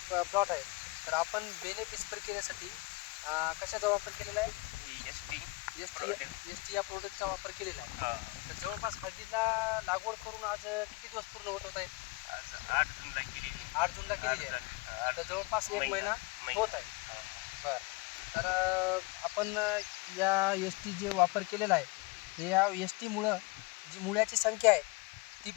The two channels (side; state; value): right; quieter; 24.3 dB